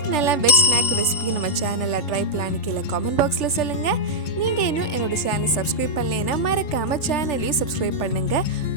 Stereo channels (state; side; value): late; right; 3.4 ms